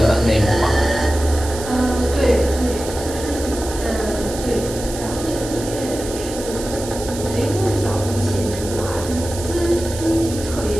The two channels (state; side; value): noise; right; hiss, 11 dB below the sound